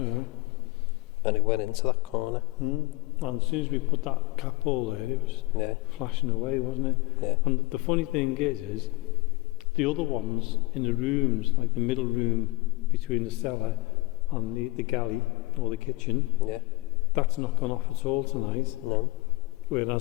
And it went into that corner. And as soon as we put that cap ball there, it was flashing away, wasn't it? Yeah. And the funny thing is the other ones in the rooms, like the middle room between the cellar and the galley or the kitchen, that's not gone off at all tonight. No.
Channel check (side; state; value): right; quieter; 21.9 dB